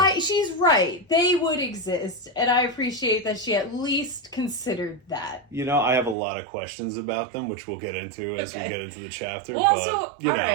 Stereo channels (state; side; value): drops out; left; at 6.2 s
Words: She's right. They would exist, and I appreciate that she at least considered that. You know, I have a lot of questions about them, which we'll get into as we Okay. get into the chapter. Well,